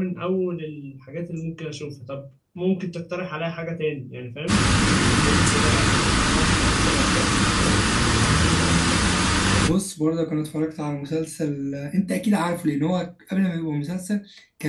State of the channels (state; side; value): identical; both; correlation 1.00